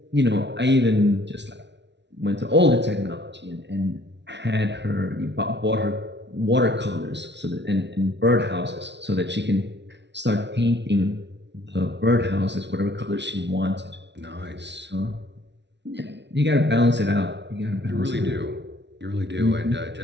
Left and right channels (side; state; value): left; late; 0.51 ms